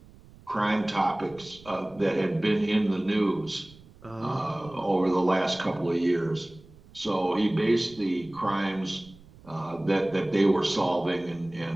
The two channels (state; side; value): noise; right; rumble, 23 dB below the sound